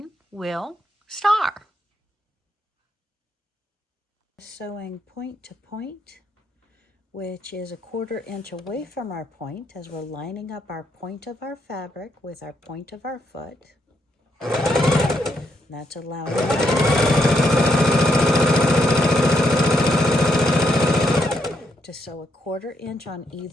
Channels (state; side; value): normal; both; correlation 0.77